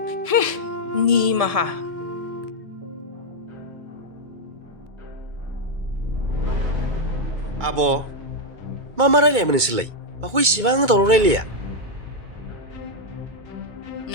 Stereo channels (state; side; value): late; left; 2.2 ms